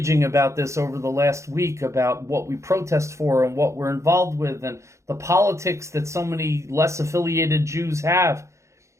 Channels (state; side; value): late; left; 0.14 ms